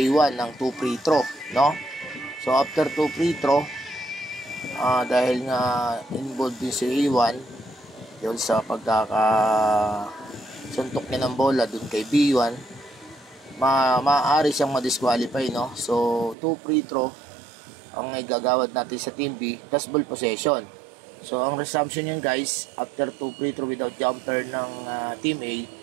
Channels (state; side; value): drops out; left; at 16.4 s